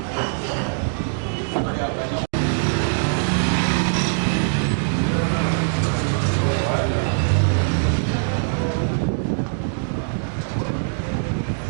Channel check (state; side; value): silent; left; digital silence